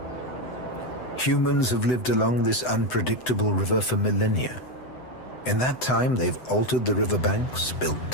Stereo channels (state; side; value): late; right; 7.9 ms